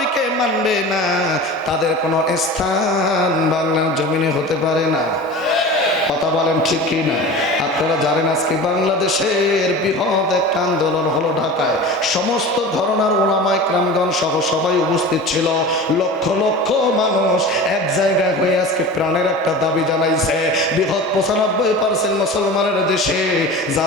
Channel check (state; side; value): normal; both; correlation 0.34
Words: মানবে না তাদের কোনো স্থান বাংলার জমিনে হতে পারে না। কথা বলেন ঠিক কি না? আপনারা জানেন আজকে বাংলাদেশের বৃহৎ একটা আন্দোলন হলো ঢাকায়। সমস্ত ঘরানার ওলামায়ে কেরামগণ সহ সবাই উপস্থিত ছিল। লক্ষ লক্ষ মানুষ এক জায়গায় হয়ে আজকে প্রাণের একটা দাবি জানাইছে। বৃহৎ 95% মুসলমানের দেশে